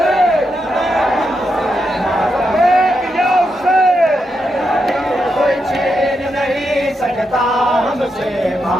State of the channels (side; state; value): both; normal; correlation 0.84